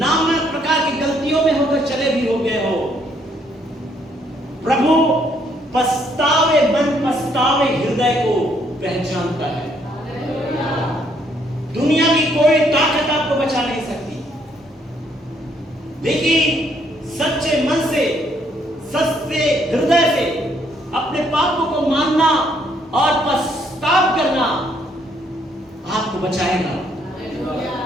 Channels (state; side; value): normal; both; correlation 0.69